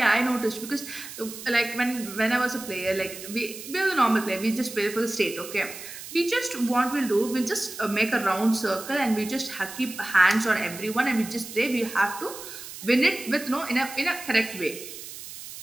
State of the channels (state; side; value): noise; right; hiss, 12 dB below the sound